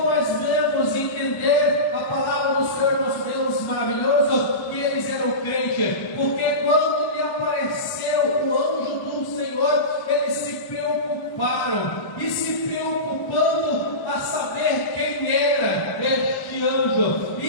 nós devemos entender a palavra do Senhor nosso Deus maravilhoso, que eles eram crentes? Porque quando lhe apareceu o anjo do Senhor, eles se preocuparam, e se preocupando a saber quem era este anjo,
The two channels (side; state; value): right; late; 1.1 ms